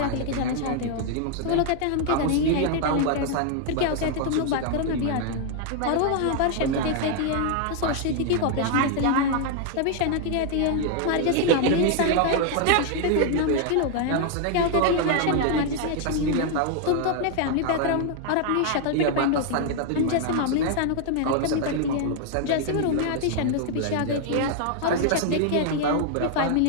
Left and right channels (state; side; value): different; both; correlation 0.00